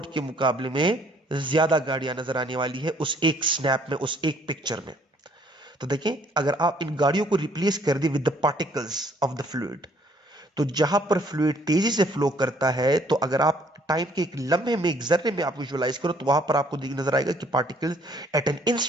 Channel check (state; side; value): normal; both; correlation 0.62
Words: के मुकाबले में ज्यादा गाड़ियां नजर आने वाली है, उस एक स्नैप में, उस एक पिक्चर में। तो देखें, अगर आप इन गाड़ियों को रिप्लेस कर दें with the particles of the fluid, तो जहां पर फ्लूइड तेजी से फ्लो करता है, तो अगर आप टाइम के एक लम्हे में, एक जर्रे में आप विजुअलाइज करो, तो वहां पर आपको नजर आएगा कि पार्टिकल्स एट एन